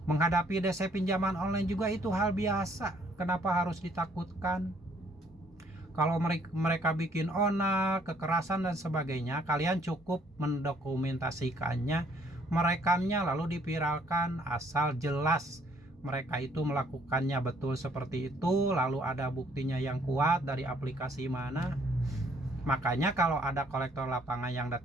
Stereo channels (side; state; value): both; normal; correlation 0.64